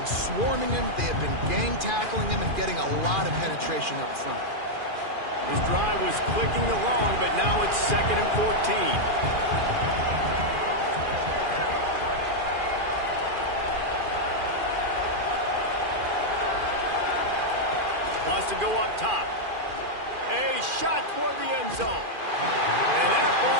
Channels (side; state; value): left; late; 2.4 ms